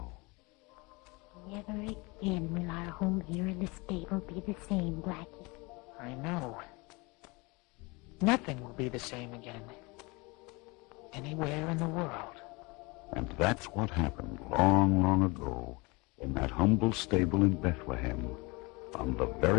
Never again will our home here in the stable be the same, Blackie. I know. Nothing will be the same again. Anywhere in the world. And that's what happened long, long ago in that humble stable in Bethlehem on the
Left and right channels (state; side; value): quieter; right; 26.2 dB